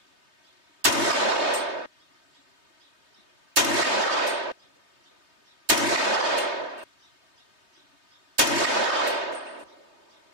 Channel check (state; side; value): late; left; 3.2 ms